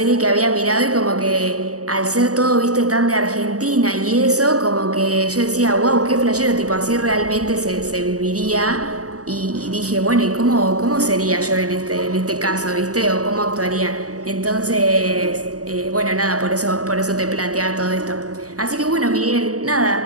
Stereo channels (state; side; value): late; left; 0.66 ms